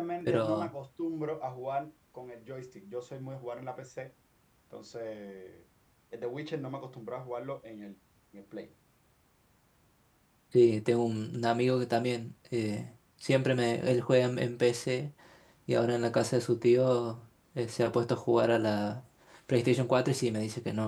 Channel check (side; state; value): both; identical; correlation 1.00